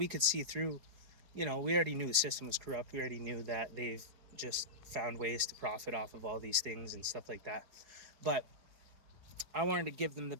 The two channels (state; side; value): late; left; 4.8 ms